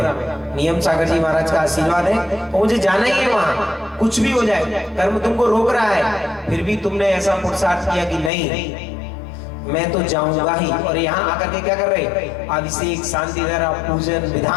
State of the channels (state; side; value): drops out; right; at 8.3 s